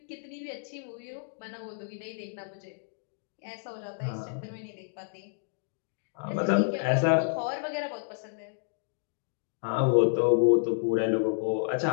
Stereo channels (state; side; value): silent; right; digital silence